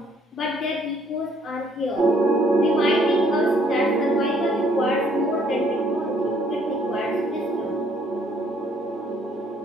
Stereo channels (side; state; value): both; normal; correlation 0.65